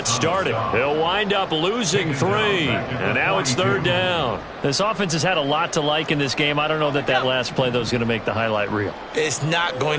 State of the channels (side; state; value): both; identical; correlation 1.00